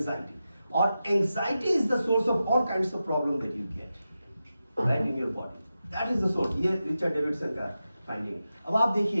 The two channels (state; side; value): inverted; both; correlation -0.91